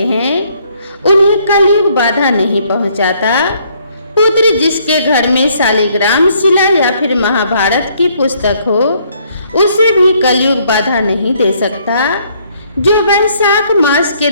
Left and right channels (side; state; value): both; inverted; correlation -0.67